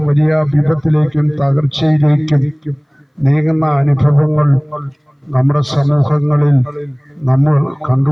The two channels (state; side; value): identical; both; correlation 1.00